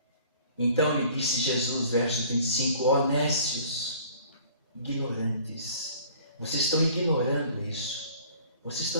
Então lhe disse Jesus, verso 25, ó nécios, ignorantes, vocês estão ignorando isso. Vocês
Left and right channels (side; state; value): both; inverted; correlation -0.51